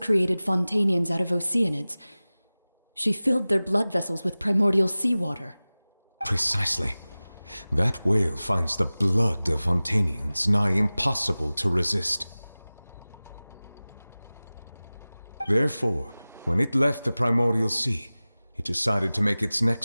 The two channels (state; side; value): inverted; both; correlation -0.98